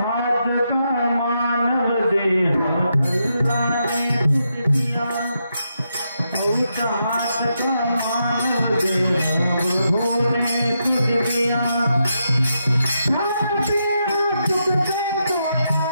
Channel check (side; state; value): both; inverted; correlation -0.83